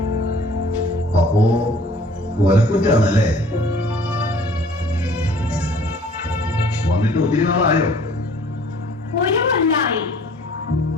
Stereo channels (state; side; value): normal; both; correlation 0.52